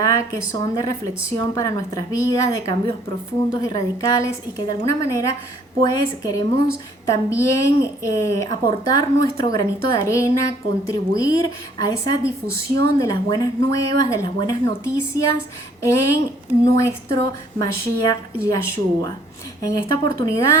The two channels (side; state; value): both; normal; correlation 0.61